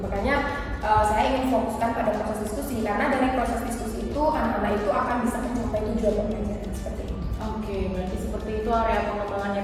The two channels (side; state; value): both; identical; correlation 1.00